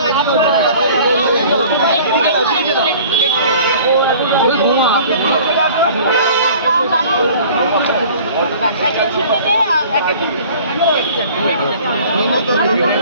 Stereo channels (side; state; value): both; inverted; correlation -0.47